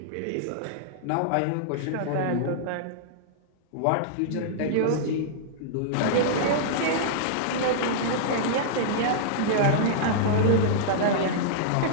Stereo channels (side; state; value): both; different; correlation -0.02